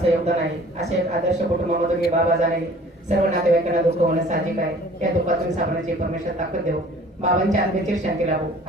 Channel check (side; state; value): both; normal; correlation 0.50